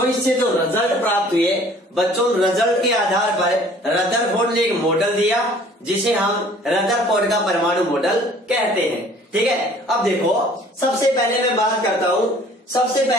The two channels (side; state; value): both; normal; correlation 0.53